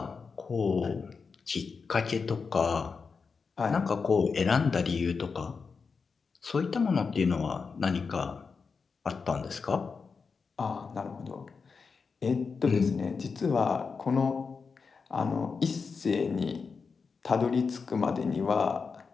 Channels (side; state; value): right; quieter; 5.1 dB